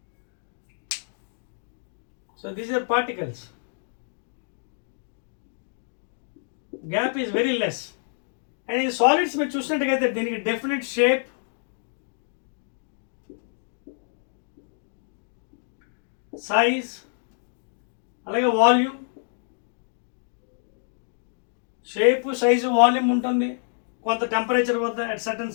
So these are particles. Gap is very less. And in solids మీరు చూసినట్టుగైతే దీనికి డెఫినెట్ షేప్, సైజ్, అలాగే వాల్యూమ్. షేప్, సైజు, వాల్యూమ్ ఉంటుంది కొంత టెంపరేచర్ వద్ద, at certain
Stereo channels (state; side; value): silent; right; digital silence